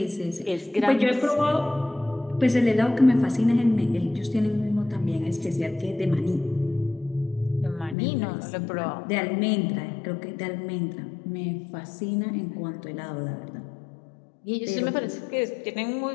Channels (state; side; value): drops out; right; at 8.0 s